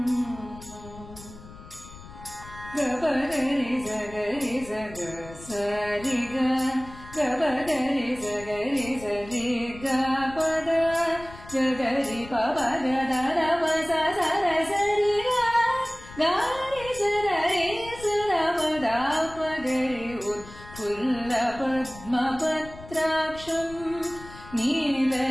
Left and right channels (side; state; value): left; noise; rumble, 17 dB below the sound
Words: गबगरि जगरि जग सरि ग गबगरि जगरि जरि ग पद गगरि पव ग द द प स स र सरि ग गरि सरि सर प द प गरि उत्फुल्लपद्मपत्राक्षं